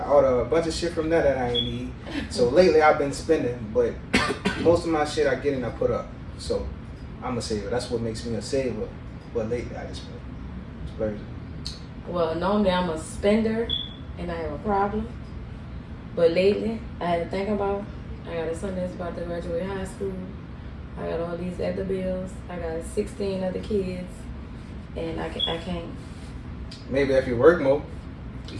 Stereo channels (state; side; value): identical; both; correlation 1.00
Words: ordered a bunch of shit from that I didn't need. So lately I've been spending, but most of my shit I get and I put up. So I'm a saver. That's what makes me a saver. But lately I just been splurging. Well, normally I'm a spender and I have a problem. But lately, I had to think about, I got a son that's about to graduate high school. I got all these other bills. I got 16 other kids. And I can't. Maybe if you work more.